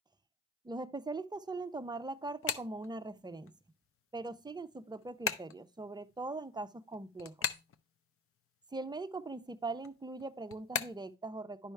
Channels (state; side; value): normal; both; correlation 0.36